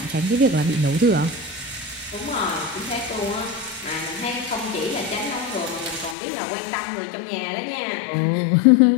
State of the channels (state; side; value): drops out; right; at 6.2 s